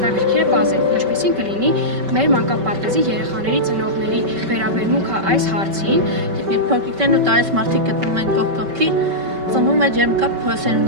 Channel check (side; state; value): left; late; 5.2 ms